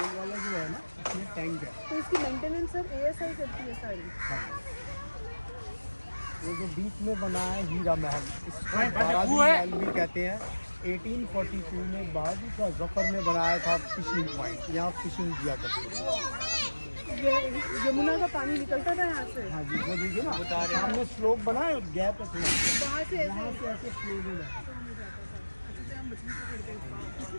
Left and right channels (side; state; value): both; inverted; correlation -1.00